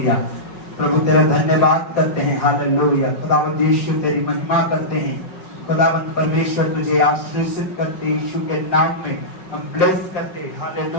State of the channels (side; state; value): right; late; 5.4 ms